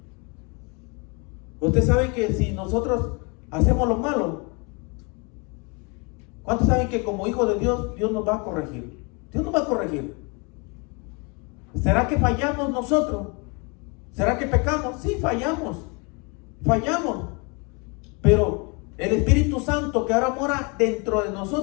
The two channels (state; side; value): quieter; right; 31.2 dB